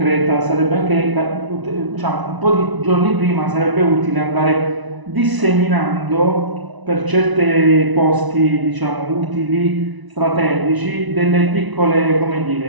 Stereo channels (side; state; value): left; late; 1.0 ms